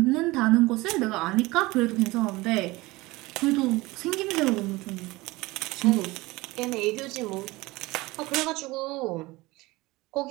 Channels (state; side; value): quieter; left; 21.1 dB